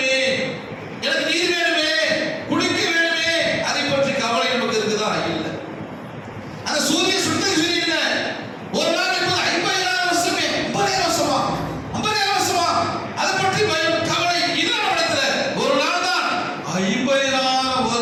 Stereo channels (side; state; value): both; identical; correlation 1.00